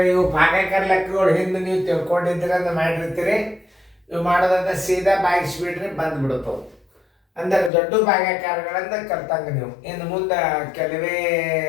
ಇವು ಭಾಗಾಕಾರ ಲೆಕ್ಕಗಳು ಹಿಂದೆ ನೀವು ತಿಳ್ಕೊಂಡಿದ್ರೆ ಅಂತ ಮಾಡಿರ್ತೀರಿ. ಇವು ಮಾಡೋದಂತ ಸೀದಾ ಬಾಗಿಸ್ಬಿಡ್ರಿ ಬಂದ್ಬಿಡ್ತಾವೆ. ಅಂದರೆ ದೊಡ್ಡ ಭಾಗಾಕಾರಗಳಿಂದ ಕಲ್ತಂಗ ನೀವು ಇನ್ನು ಮುಂದೆ ಕೆಲವೇ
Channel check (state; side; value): drops out; right; at 7.7 s